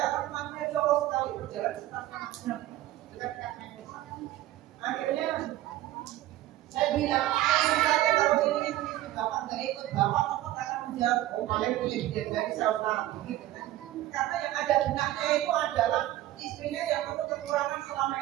kan maknya jauh sekali berjalan sekitar 1,5 jam dekat-dekat Memphis. Akhirnya saya bilang, saja kalau ini istri bapak nggak ikut, bapak akan menjawab, oh paling punya dia dari saudara, gitu kan? Karena yang ada benaknya itu adalah istrinya yang penuh kekurangan selama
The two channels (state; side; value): quieter; left; 14.9 dB